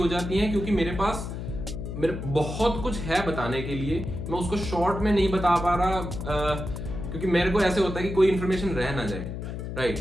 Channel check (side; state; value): left; noise; hum, 6 dB below the sound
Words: जाती हैं क्योंकि मेरे बहुत कुछ है बताने के लिए, मैं उसको शॉर्ट में नहीं बता पा रहा, क्योंकि मेरे को ऐसे होता है कि कोई इन्फॉर्मेशन रह ना जाए, राइट।